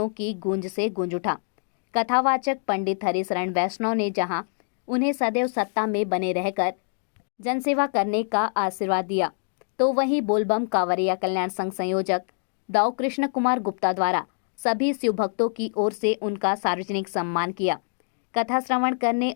की गूंज से गूंज उठा। कथावाचक पंडित हरिशरण वैष्णव ने जहां उन्हें सदैव सत्ता में बने रहकर जनसेवा करने का आशीर्वाद दिया, तो वहीं बोलबम कांवरिया कल्याण संघ संयोजक दाऊ कृष्ण कुमार गुप्ता द्वारा सभी शिव भक्तों की ओर से उनका सार्वजनिक सम्मान किया। कथा श्रवण करने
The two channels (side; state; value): right; silent; digital silence